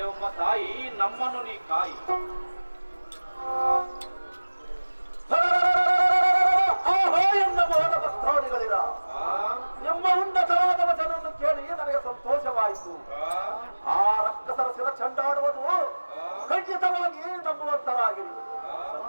ತಾಯಿ, ನಮ್ಮನ್ನು ನೀ ಕಾಯಿ. ಎನ್ನ ಮೋಹನ ಭಕ್ತಾದಿಗಳಿರ ನಿಮ್ಮ ಉನ್ನತವಾದ ವಚನವನ್ನು ಕೇಳಿ ನನಗೆ ಸಂತೋಷವಾಯಿತು. ಆ ರಕ್ಕಸರ ಶಿರ ಚಂಡಾಡುವುದು ಖಂಡಿತವಾಗಿ ನಂಬುವಂತರಾಗಿರಿ.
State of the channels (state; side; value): inverted; both; correlation -1.00